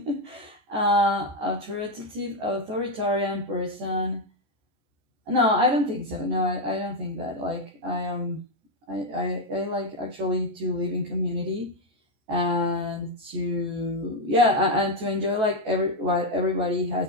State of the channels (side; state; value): left; late; 14 ms